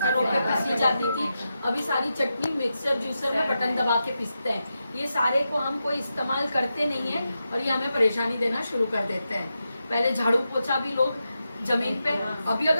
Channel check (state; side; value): inverted; both; correlation -0.88